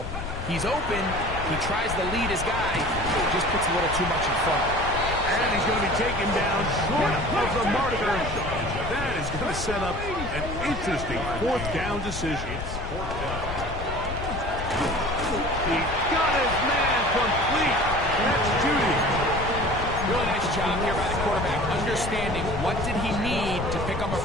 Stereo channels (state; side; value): noise; left; rumble, 7 dB below the sound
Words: He's open, he tries to lead his guy, just puts a little too much in front of him. And he's going to be taken down short of the marker. That is going to set up an interesting 4th down decision. It's 4th down. He got his man complete. That's Judy. Really nice job here by the quarterback, understanding what did he need to pick up a